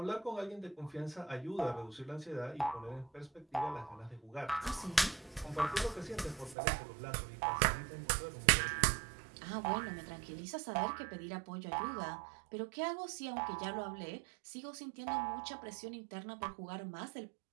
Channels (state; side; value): drops out; left; at 6.6 s